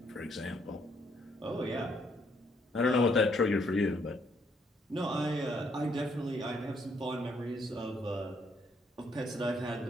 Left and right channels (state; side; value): normal; both; correlation 0.71